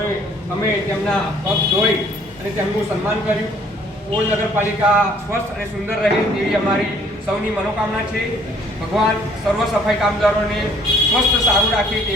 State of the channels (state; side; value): normal; both; correlation 0.59